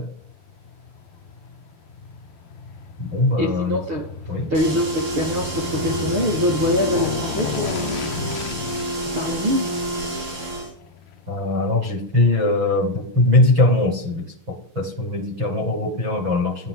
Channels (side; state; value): left; late; 6.8 ms